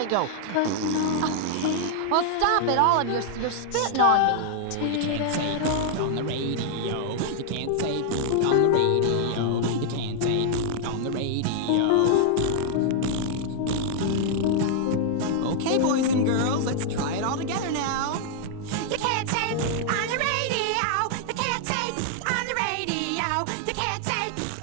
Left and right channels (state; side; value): different; both; correlation -0.01